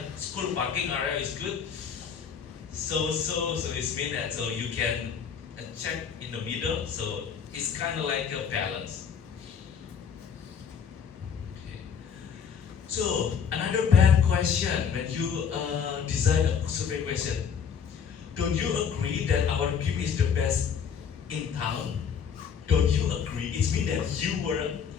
school parking area is good? So it's mean that so you can check in the middle. So it's kind of like a balance. Okay. So another bad question when you design a survey question. Don't you agree that our gym is the best in town? Don't you agree? It means that you were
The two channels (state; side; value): quieter; right; 7.1 dB